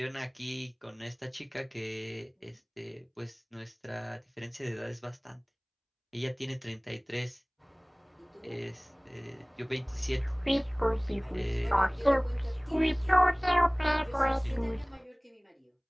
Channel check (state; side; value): identical; both; correlation 1.00